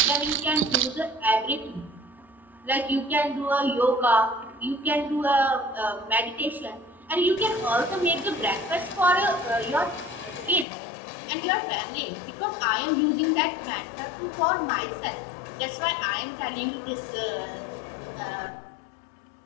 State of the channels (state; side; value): drops out; right; at 10.7 s